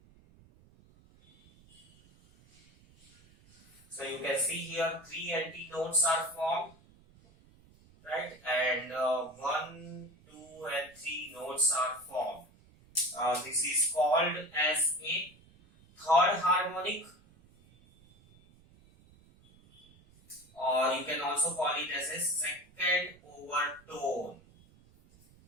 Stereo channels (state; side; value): noise; right; rumble, 27 dB below the sound